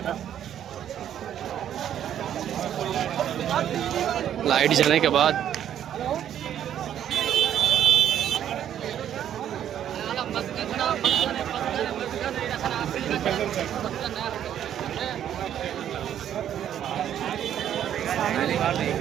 لائٹ جانے کے بعد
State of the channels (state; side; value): quieter; left; 10.2 dB